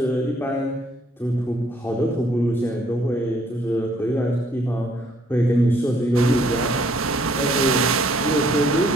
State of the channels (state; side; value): normal; both; correlation 0.65